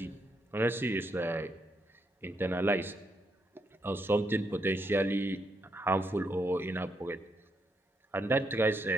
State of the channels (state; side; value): normal; both; correlation 0.78